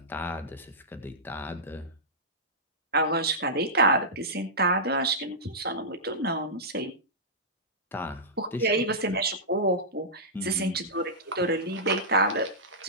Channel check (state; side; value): normal; both; correlation -0.15